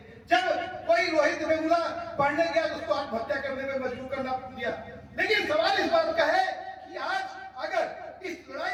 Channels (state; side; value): identical; both; correlation 1.00